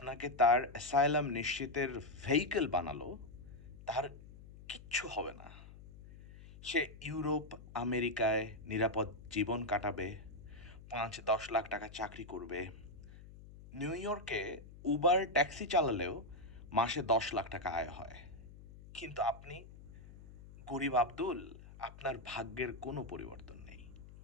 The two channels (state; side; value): noise; left; hum, 17 dB below the sound